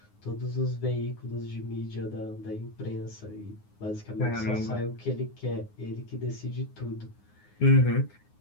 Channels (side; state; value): right; late; 9.6 ms